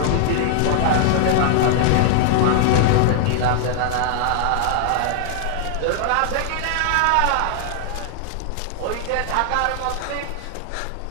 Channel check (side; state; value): both; different; correlation -0.01